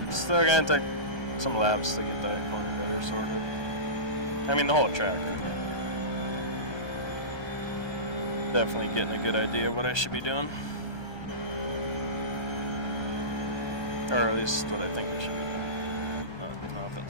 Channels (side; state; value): right; late; 1.2 ms